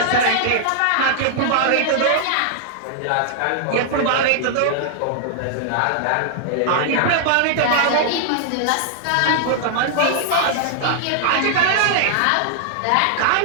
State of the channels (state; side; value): different; both; correlation -0.01